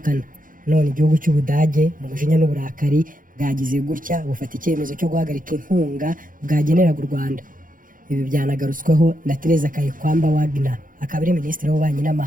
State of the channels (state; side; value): late; left; 0.40 ms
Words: None igihugu cy'Ubudage mu mujinya n'uburakari bwagize gutya bufata icyemezo cyo guhagarika inkunga bwageneraga u Rwanda. Ibi byanagarutsweho na Teresa Kayikwamba Wagner akaba ari minisitiri w'ububanyi